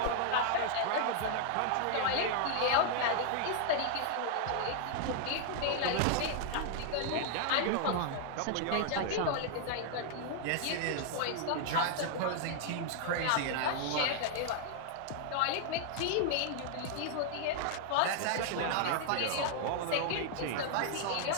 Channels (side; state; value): both; different; correlation 0.00